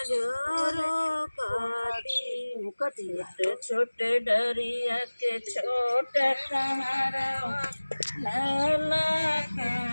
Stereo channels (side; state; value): both; inverted; correlation -1.00